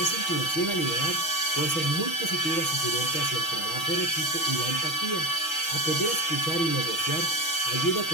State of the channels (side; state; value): right; late; 6.2 ms